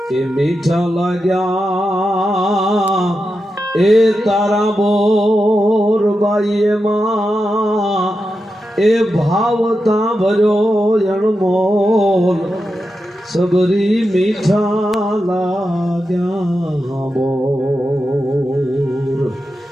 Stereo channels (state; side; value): normal; both; correlation 0.89